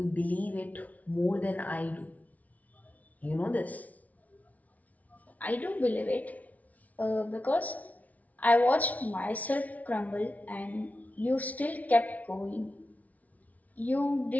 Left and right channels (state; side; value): late; right; 0.072 ms